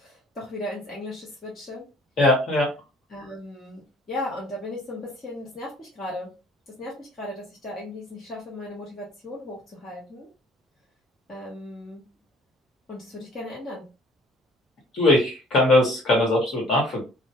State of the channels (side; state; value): both; normal; correlation 0.54